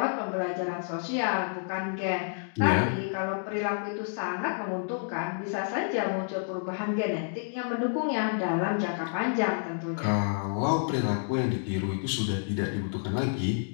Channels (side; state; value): right; silent; digital silence